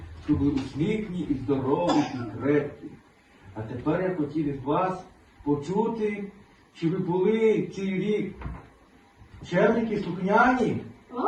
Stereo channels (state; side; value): identical; both; correlation 1.00